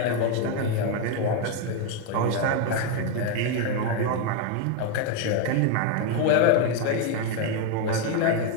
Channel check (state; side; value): different; both; correlation 0.01